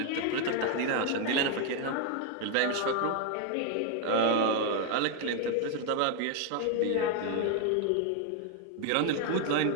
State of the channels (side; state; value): both; different; correlation 0.01